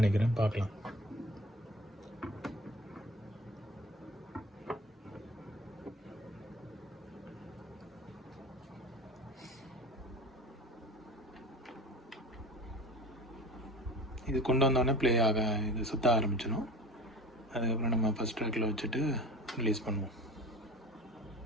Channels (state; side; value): normal; both; correlation 0.37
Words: பார்க்கலாம். இது கொண்டு வந்தோடனே ப்ளே ஆக இது சுற்ற ஆரம்பிச்சிடும். அதுக்கப்புறம் நம்ம ஃபஸ்ட் ட்ராக்கில் வச்சுட்டு ரிலீஸ் பண்ணுவோம்.